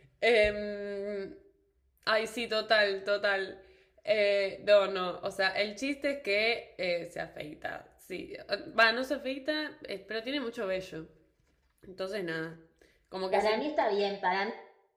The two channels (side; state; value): both; identical; correlation 1.00